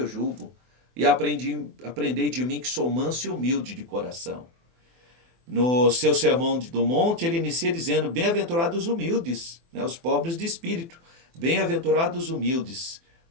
jugo e aprendei de mim que sou manso e humilde de coração. No seu sermão do monte, ele inicia dizendo, bem-aventurados os humildes, né, os pobres de espírito. Bem-aventurados os humildes,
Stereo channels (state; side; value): late; left; 24 ms